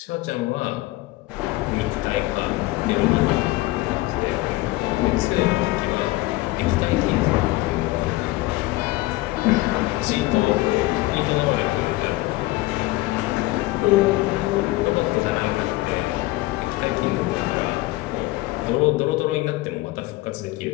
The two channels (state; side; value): quieter; right; 19.4 dB